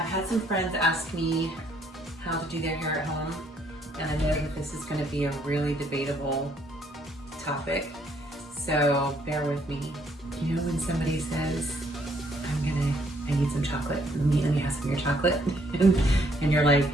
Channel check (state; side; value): normal; both; correlation 0.67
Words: had some friends ask me how to do their hair at home, and I know that this is going to be a really debatable topic. So bear with me. You know when somebody says, I need some chocolate, let me have some of your chocolate, and you're like,